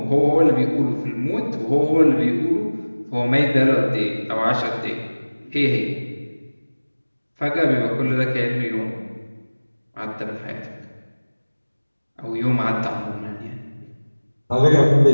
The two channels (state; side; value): inverted; both; correlation -1.00